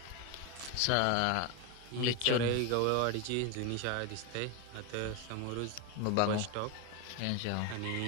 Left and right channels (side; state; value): both; different; correlation 0.02